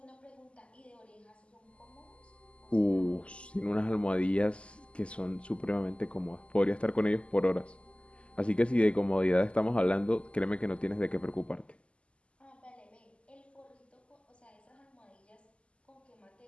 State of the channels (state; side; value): late; right; 0.055 ms